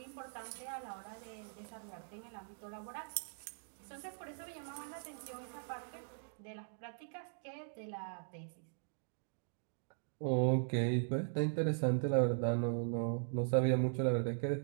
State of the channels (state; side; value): silent; left; digital silence